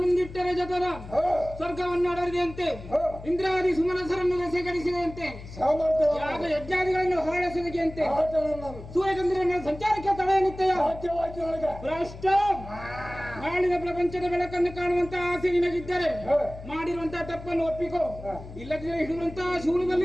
ಜತನ ಸ್ವರ್ಗವನ್ನು ಅಡರಿದೆಯಂತೆ ಇಂದ್ರಾದಿ ಸುಮನಸರನ್ನು ಸೇಕರಿಸಿದಂತೆ ಯಾಗ ಯಜ್ಞಾದಿಗಳನ್ನು ಹೊರಡಿಸಿದಂತೆ ಸೂರ್ಯಚಂದ್ರನ ಸಂಚಾರಕ್ಕೆ ತಡೆ ನಿತ್ಯ ಭ್ರಷ್ಟ ನಾಳಿನ ಪ್ರಪಂಚದ ಬೆಳಕನ್ನು ಕಾಣುವಂತ ಆಸೆ ನಿನಗಿದ್ದರೆ ಮಾಡಿರುವಂತಹ ತಪ್ಪನ್ನು ಒಪ್ಪಿಕೋ ಇಲ್ಲದಿದ್ದರೆ ಹಿಡಿಯುವಂತಹ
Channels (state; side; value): noise; left; hum, 14 dB below the sound